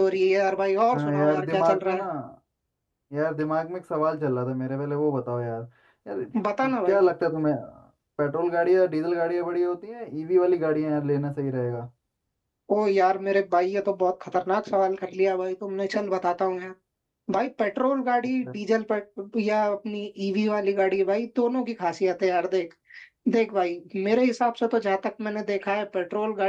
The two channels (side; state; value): both; identical; correlation 1.00